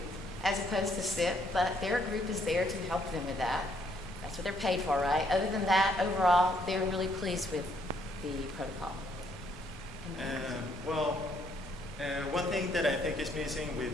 as opposed to SIP, but their group is there to help them with that. That's what they're paid for, right? Other than that, overall, they're really pleased with the protocol. One thing that I think is missing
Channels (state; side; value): normal; both; correlation 0.69